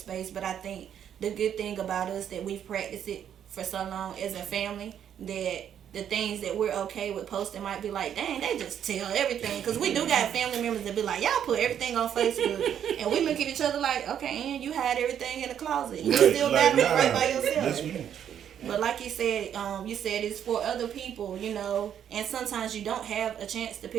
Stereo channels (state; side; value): quieter; left; 9.3 dB